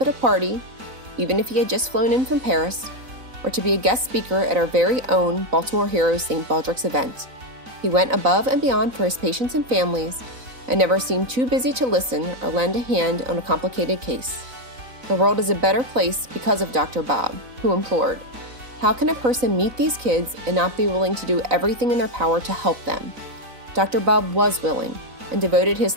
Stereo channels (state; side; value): late; left; 4.0 ms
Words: a party, even if he had just flown in from Paris, or to be a guest speaker at our very own Baltimore Heroes St. Baldrick's event. He went above and beyond for his patients and families, and never seemed too busy to listen or lend a hand on a complicated case. The world is a better place because of Dr. Bob, who implored, "How can a person meet these kids and not be willing to do everything in their power to help them?" Dr. Bob was willing and devoted